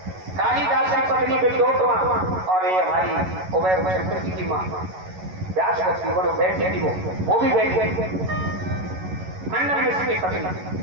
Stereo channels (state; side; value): late; left; 11 ms